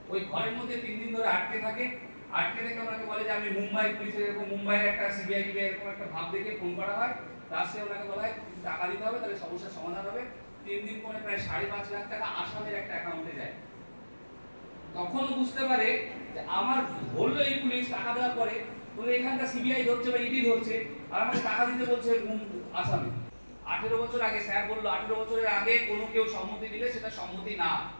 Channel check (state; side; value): inverted; both; correlation -1.00